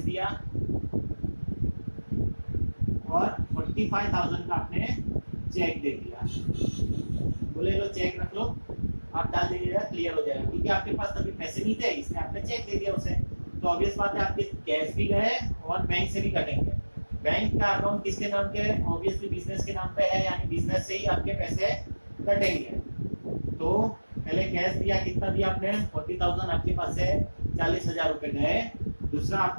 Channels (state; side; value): inverted; both; correlation -1.00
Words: दिया और 45,000 का आपने चेक दे दिया, बोले लो चेक रख लो, आप डाल दीजिएगा क्लियर हो जाएगा, क्योंकि आपके पास तभी पैसे नहीं थे इसलिए आपने चेक दे दिया उसे। तो ऑब्वियस बात है आपके कैश भी गए और बैंक से भी कटेंगे। बैंक का अकाउंट किसके नाम के है, ऑब्वियसली बिजनेस के नाम पे है, यानी बिजनेस से ही आपके पैसे कटेंगे। तो पहले कैश दिया, कितना दिया आपने 40,000, आपके पास से 40,000 रुपए गए, दूसरा